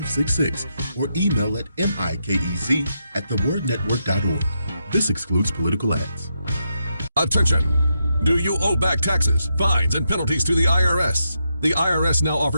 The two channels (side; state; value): both; inverted; correlation -0.82